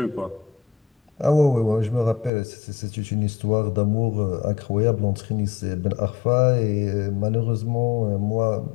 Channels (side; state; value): right; drops out; at 2.3 s